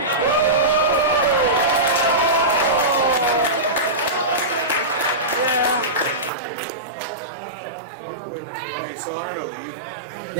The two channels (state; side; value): drops out; left; at 6.3 s